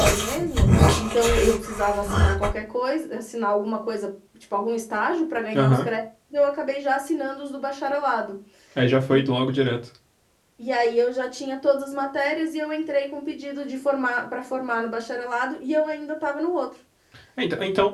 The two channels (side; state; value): both; identical; correlation 1.00